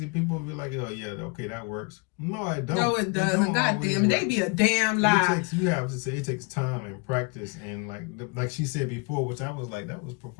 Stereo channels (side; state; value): right; quieter; 29.1 dB